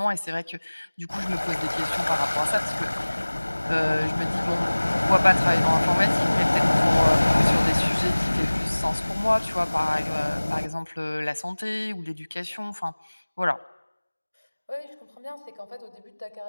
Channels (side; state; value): both; inverted; correlation -1.00